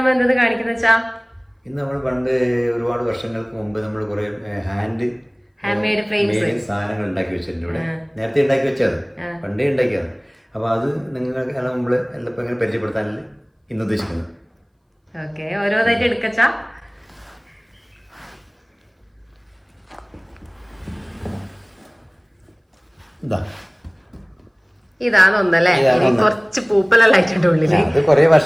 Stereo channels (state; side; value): identical; both; correlation 1.00